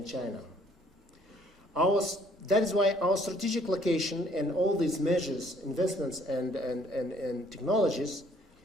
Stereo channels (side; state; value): both; normal; correlation 0.62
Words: China. That is why our strategic location and all these measures, investments, and technologies